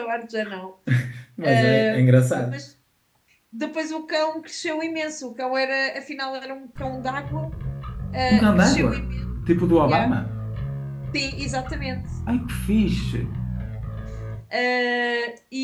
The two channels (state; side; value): identical; both; correlation 1.00